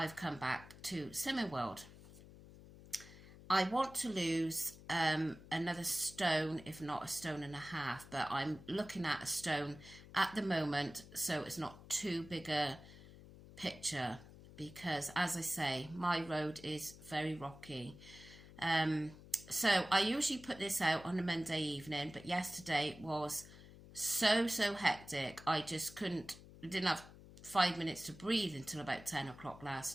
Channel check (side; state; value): left; noise; hum, 18 dB below the sound